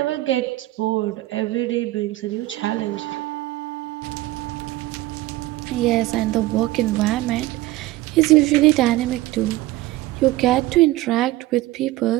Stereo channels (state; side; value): quieter; left; 17.5 dB